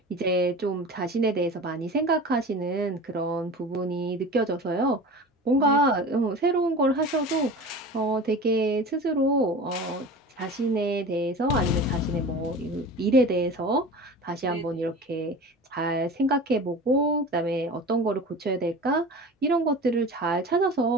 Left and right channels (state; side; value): normal; both; correlation 0.35